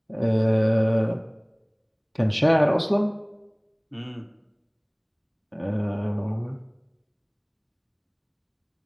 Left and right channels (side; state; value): both; identical; correlation 1.00